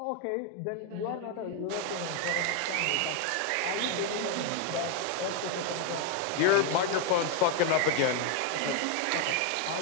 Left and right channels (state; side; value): different; both; correlation 0.01